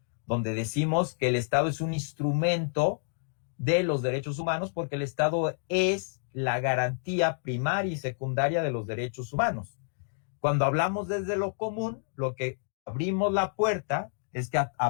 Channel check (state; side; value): silent; right; digital silence